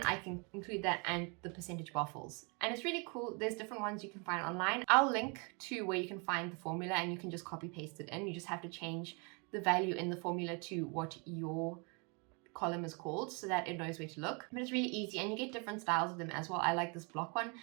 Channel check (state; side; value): quieter; left; 33.3 dB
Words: I can include that and the percentage bar fills. And it's really cool. There's different ones you can find online. I'll link to where you can find the formula, and you can just copy paste it in. You just have to change the value in the formula to what your column is called, so that it knows where to look. But it's really easy, and you get different styles of them as well. I like this block one,